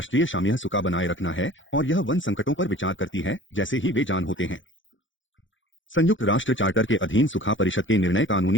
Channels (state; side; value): late; right; 0.56 ms